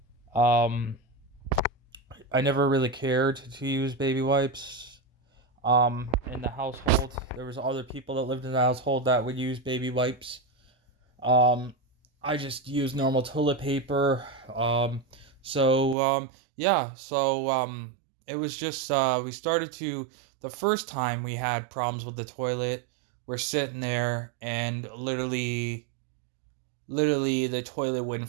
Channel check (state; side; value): drops out; left; at 16.0 s